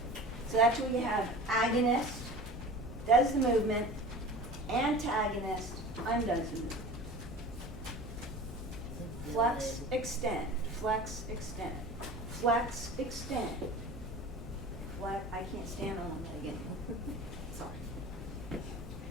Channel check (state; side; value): normal; both; correlation 0.37